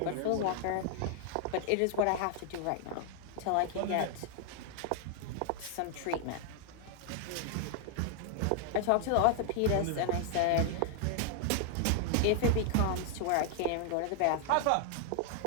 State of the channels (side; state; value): both; different; correlation 0.00